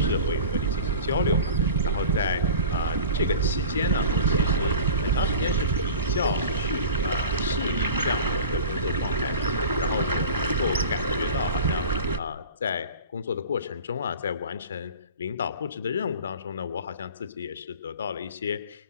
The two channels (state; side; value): inverted; both; correlation -0.37